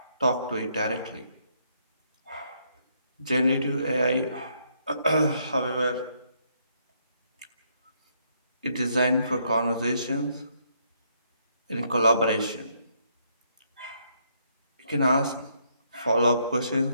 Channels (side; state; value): both; inverted; correlation -0.72